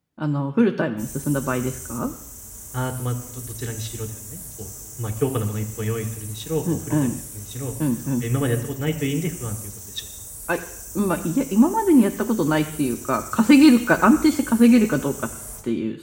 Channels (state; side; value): identical; both; correlation 1.00